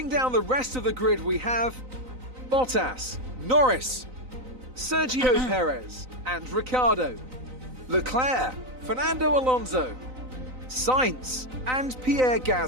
down the rest of the grid, we have Bottas, Norris, Sergio Perez, and Ricciardo, Leclerc, Fernando Alonso, Sainz, and Pierre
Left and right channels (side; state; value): left; late; 3.9 ms